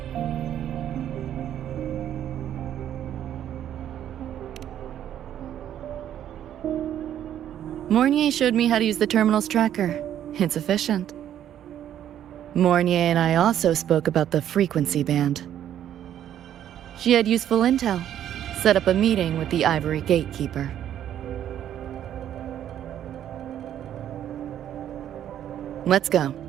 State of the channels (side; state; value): left; quieter; 10.7 dB